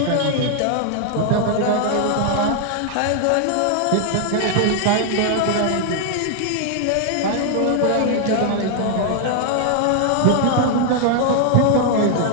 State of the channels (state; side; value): different; both; correlation 0.00